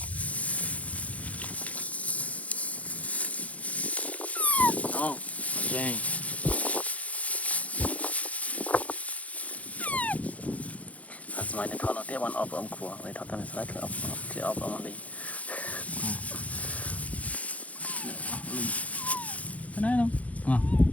oh okay sớm này thọ nó tiếp ăn ốp ốm khua vậy thọ tao sẽ thử ốp thì ốp ốm đi cái này không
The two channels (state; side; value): late; right; 0.068 ms